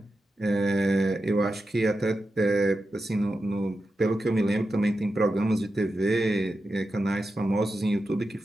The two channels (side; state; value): both; normal; correlation 0.90